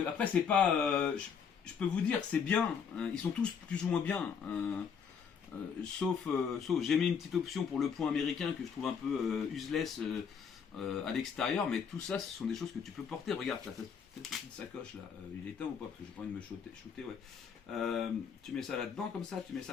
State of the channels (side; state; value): right; quieter; 6.7 dB